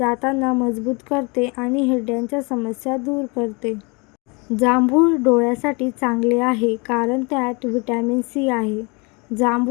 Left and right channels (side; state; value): right; quieter; 29.7 dB